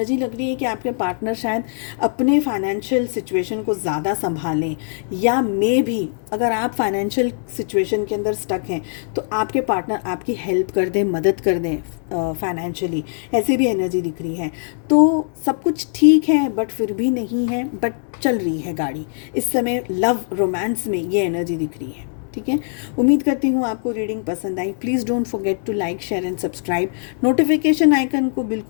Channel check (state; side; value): silent; right; digital silence